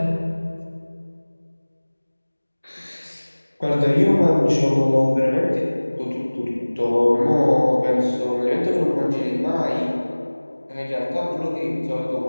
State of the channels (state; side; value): inverted; both; correlation -1.00